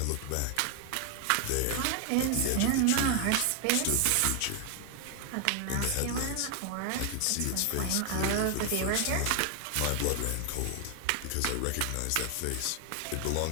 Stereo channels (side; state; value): both; different; correlation 0.01